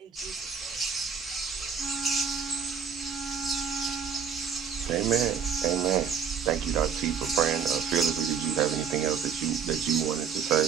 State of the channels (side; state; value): left; quieter; 6.9 dB